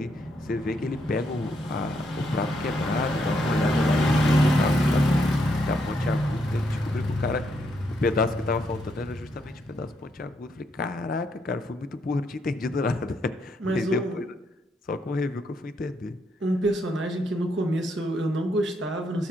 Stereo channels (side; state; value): both; normal; correlation 0.77